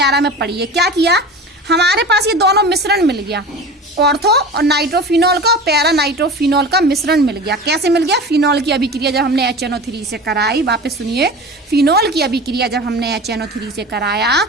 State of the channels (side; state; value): both; normal; correlation 0.34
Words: में पढ़ी है। क्या किया, हमारे पास ये दोनों मिश्रण मिल गया, ऑर्थो और नाइट्रोफिनॉल का और पैरा नाइट्रोफिनॉल का मिश्रण मिल गया। कैसे मिल गया? फिनॉल की अभिक्रिया जब हमने HNO3 से कराई, वापस सुनिए, फिनॉल की अभिक्रिया जब हमने HNO3 से कराया